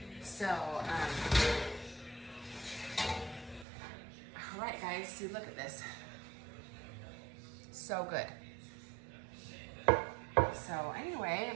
So, all right guys, see, look at this. So good. So anyway,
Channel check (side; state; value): left; drops out; at 3.7 s